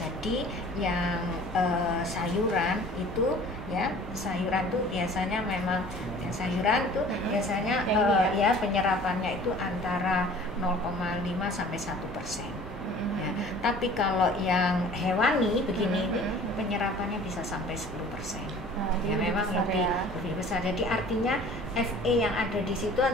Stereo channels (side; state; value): both; normal; correlation 0.47